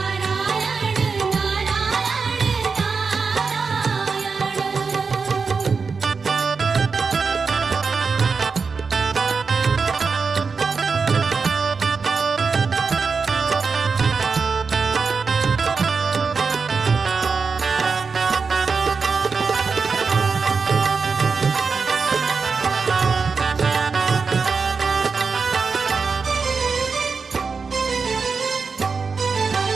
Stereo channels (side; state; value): left; quieter; 5.0 dB